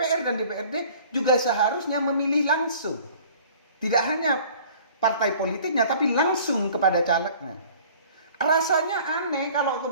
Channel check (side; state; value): both; inverted; correlation -0.50